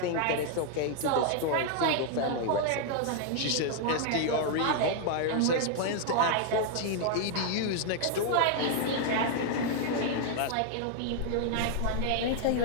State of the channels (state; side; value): different; both; correlation 0.00